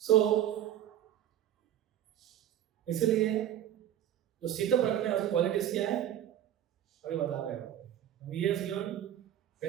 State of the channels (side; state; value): left; quieter; 11.2 dB